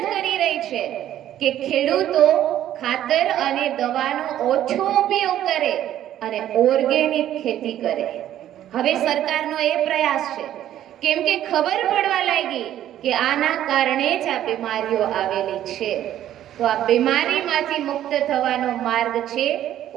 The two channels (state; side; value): quieter; left; 11.9 dB